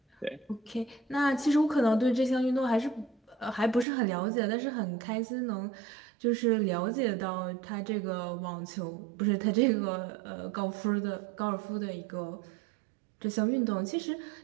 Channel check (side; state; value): left; drops out; at 3.9 s